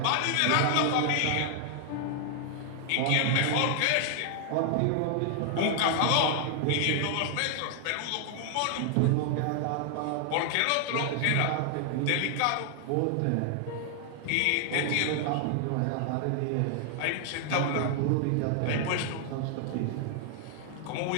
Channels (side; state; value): both; different; correlation 0.00